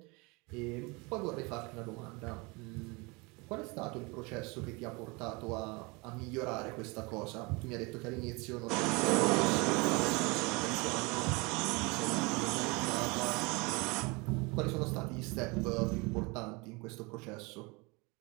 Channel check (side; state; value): left; quieter; 27.2 dB